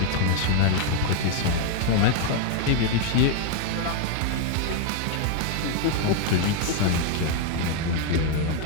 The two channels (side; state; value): both; different; correlation 0.00